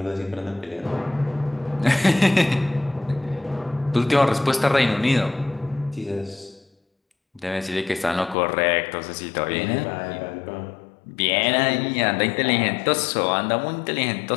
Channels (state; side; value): drops out; right; at 8.3 s